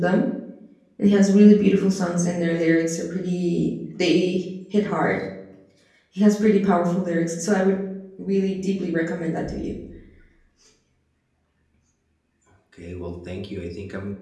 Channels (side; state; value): both; identical; correlation 1.00